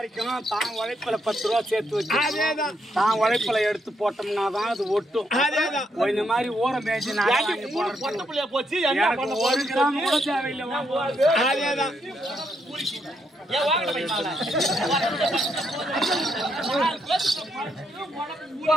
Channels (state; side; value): normal; both; correlation 0.77